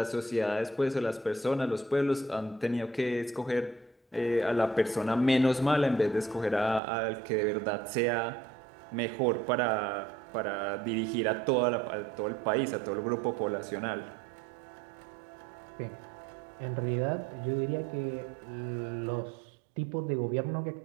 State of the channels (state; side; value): drops out; left; at 6.8 s